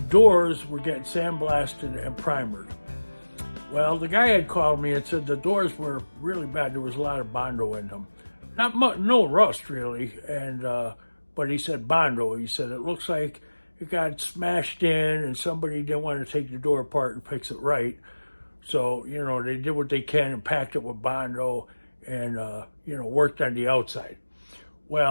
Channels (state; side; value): inverted; both; correlation -1.00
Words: doors were getting sandblasted and primered. Well, the guy had called me and said the doors were really bad. There was a lot of Bondo in them. Not much, no rust really, and but he said Bondo. He said it looks like it got smashed in, and somebody didn't want to take the door apart and fix it right. So they did what they can and packed it with Bondo, and worked on the outside.